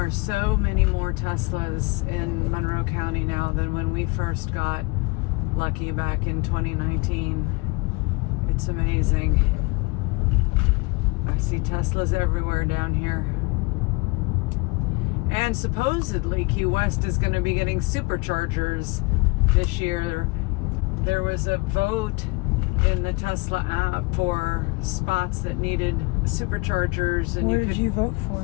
so many more Teslas in Monroe County now than when we first got lucky back in 2019. It's amazing. I see Teslas everywhere down here. And supposedly Key West is going to be getting Superchargers this year. There was a vote in the Tesla app for spots that needed Superchargers, and Where did you vote for?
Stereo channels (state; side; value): quieter; right; 27.0 dB